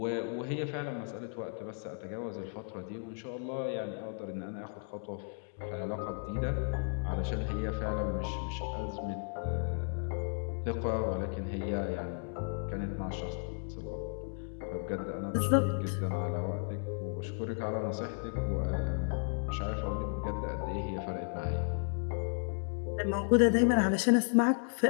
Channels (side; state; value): right; silent; 55 dB below the other